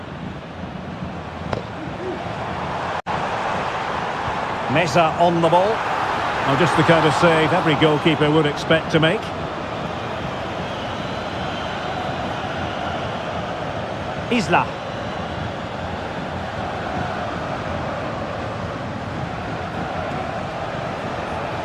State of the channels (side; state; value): both; identical; correlation 1.00